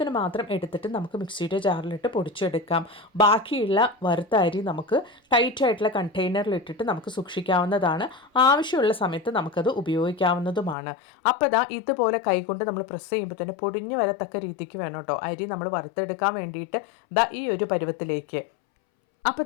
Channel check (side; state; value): right; drops out; at 10.8 s